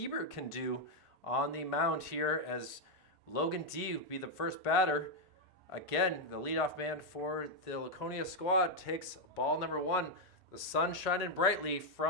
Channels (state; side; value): normal; both; correlation 0.00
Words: can do on the mound here as Logan D will be the first batter. Again, the leadoff man for the Laconia squad takes ball number 1. The sun shining brightly